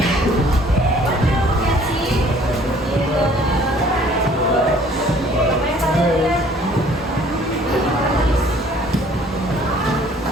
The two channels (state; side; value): normal; both; correlation 0.56